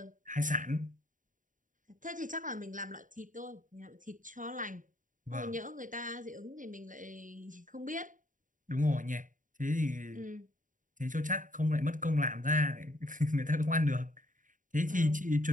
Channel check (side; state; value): left; late; 0.38 ms